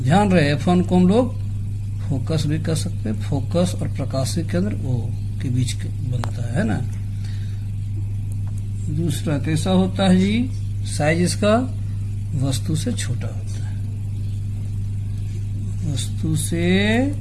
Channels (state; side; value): identical; both; correlation 1.00